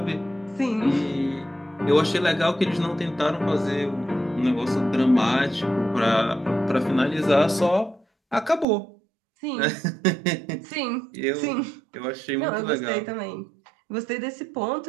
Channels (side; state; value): left; drops out; at 8.7 s